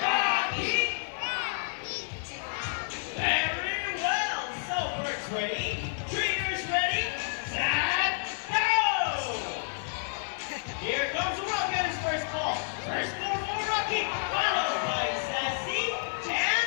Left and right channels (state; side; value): silent; right; digital silence